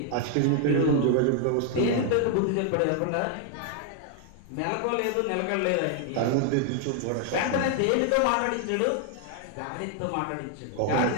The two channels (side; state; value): both; different; correlation 0.00